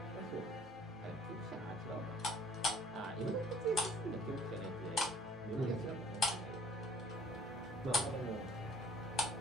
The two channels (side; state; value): both; normal; correlation 0.55